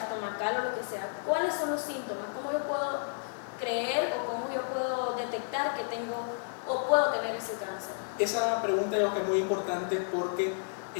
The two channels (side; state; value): right; silent; 57 dB below the other